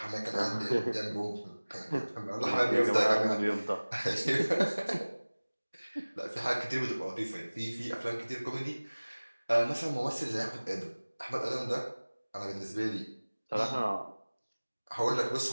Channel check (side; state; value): both; inverted; correlation -1.00